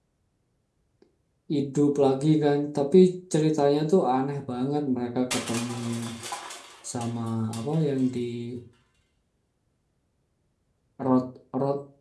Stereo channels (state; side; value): identical; both; correlation 1.00